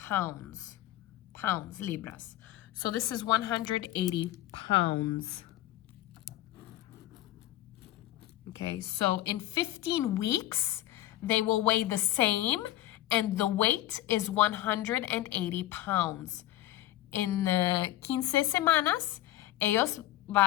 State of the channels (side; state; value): right; quieter; 14.8 dB